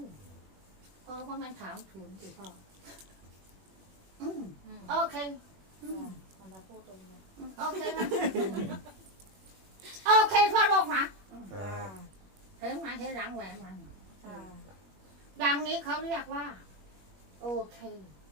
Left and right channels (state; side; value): late; left; 21 ms